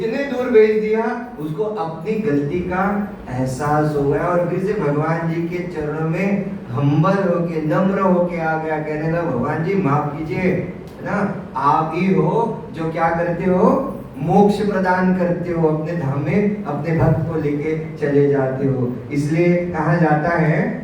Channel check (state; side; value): identical; both; correlation 1.00